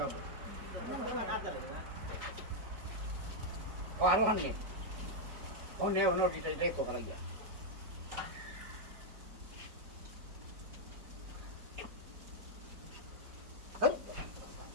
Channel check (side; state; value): left; late; 4.9 ms